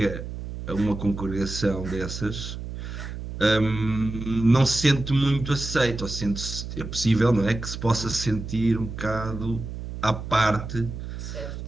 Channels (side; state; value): right; noise; hum, 8 dB below the sound